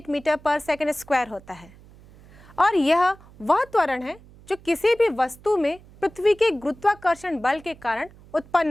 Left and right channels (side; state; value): right; noise; hum, 23 dB below the sound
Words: मीटर पर सेकंड स्क्वायर होता है और यह वह त्वरण है जो किसी भी वस्तु में पृथ्वी के गुरुत्वाकर्षण बल के कारण